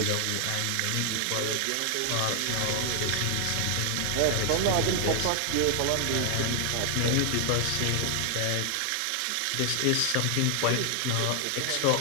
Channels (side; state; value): both; different; correlation 0.00